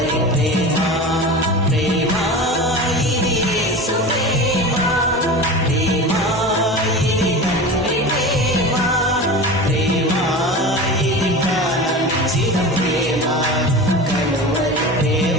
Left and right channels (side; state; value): both; normal; correlation 0.30